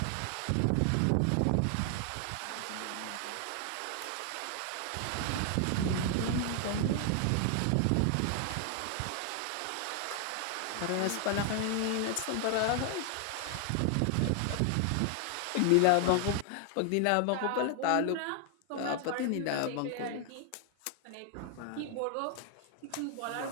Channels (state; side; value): different; both; correlation 0.00